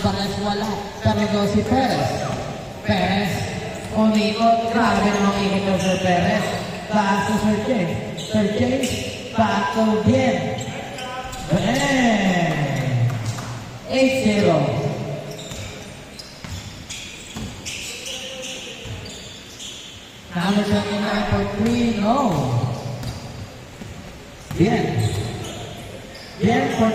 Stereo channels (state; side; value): identical; both; correlation 1.00